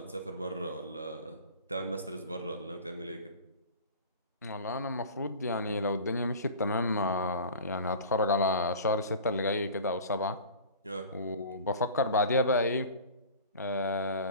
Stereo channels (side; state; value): both; inverted; correlation -0.40